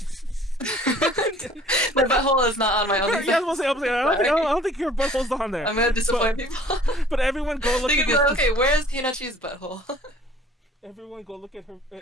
My butthole is not on my OnlyFans. Yeah, I was gonna say, I don't think your butthole's on there. I'm gonna disappoint people. But everyone go look They at could be like, okay, where's Hinnachi's butthole? Everyone go look at her.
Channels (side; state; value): both; normal; correlation 0.51